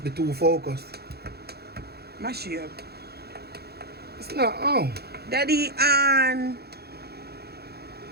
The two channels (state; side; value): late; left; 0.46 ms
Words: be too focused. Mash you up. It's not on. Daddy on.